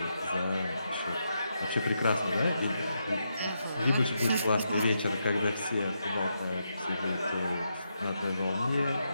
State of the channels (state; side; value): inverted; both; correlation -0.83